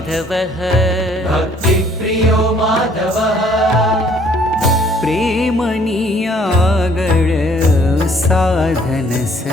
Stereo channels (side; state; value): both; normal; correlation 0.60